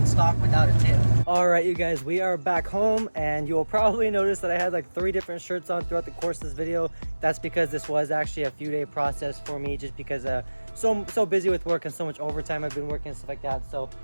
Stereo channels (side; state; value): both; inverted; correlation -1.00